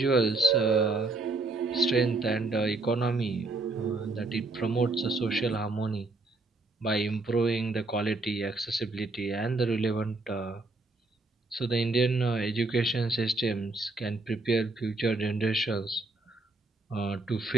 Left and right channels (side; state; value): left; quieter; 3.2 dB